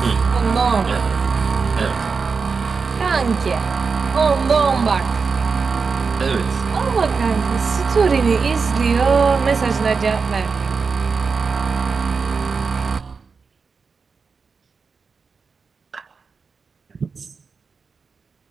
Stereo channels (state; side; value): quieter; left; 5.0 dB